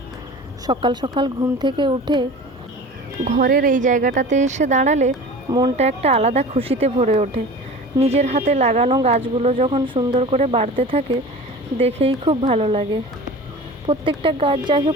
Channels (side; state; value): both; normal; correlation 0.37